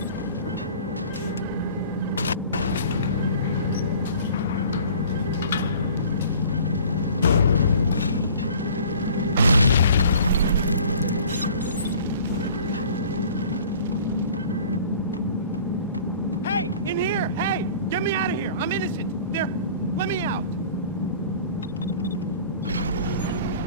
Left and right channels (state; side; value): inverted; both; correlation -0.47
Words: Hey! In here! Hey! Get me out of here! I'm innocent! There! Let me out!